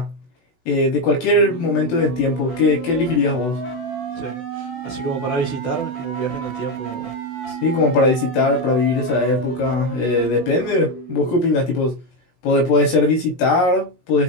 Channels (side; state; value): right; late; 16 ms